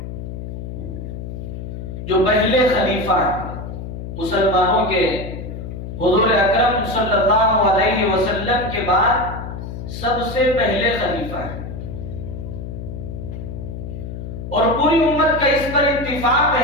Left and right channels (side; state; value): left; noise; hum, 8 dB below the sound